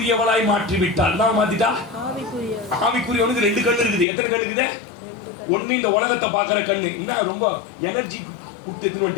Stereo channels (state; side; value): drops out; right; at 4.0 s